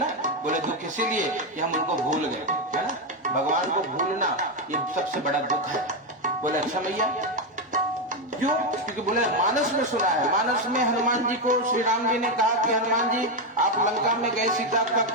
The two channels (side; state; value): both; normal; correlation 0.08